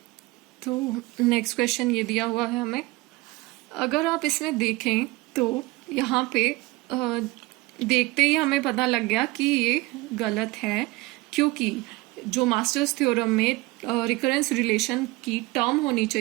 तो नेक्स्ट क्वेश्चन ये दिया हुआ है हमें, अगर आप इसमें देखें तो यहाँ पे देखते ही हमें पता लग गया कि ये गलत है, क्योंकि जो मास्टर्स थ्योरम में रिकरेंस रिलेशन की टर्म होनी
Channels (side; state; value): left; quieter; 21.4 dB